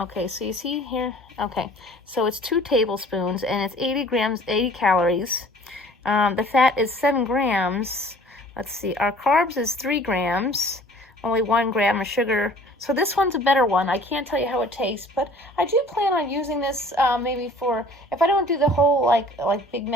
so you see here? Okay, so it's 2 tablespoons, and it's 80 calories. The fat is 7 grams. Let's see, our carbs is 3 grams. Only 1 gram of sugar. So this one's a better one. I can't tell you how it tastes, but I do plan on using this maybe for, if I don't do the whole like Big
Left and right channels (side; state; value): both; normal; correlation 0.50